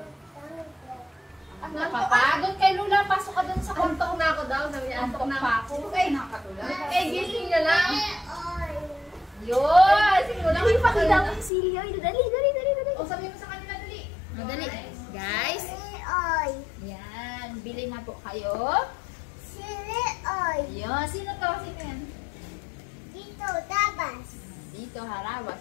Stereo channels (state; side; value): drops out; right; at 11.5 s